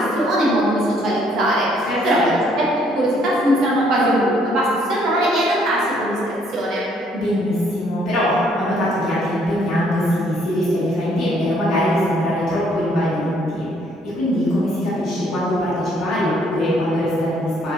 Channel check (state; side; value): normal; both; correlation 0.66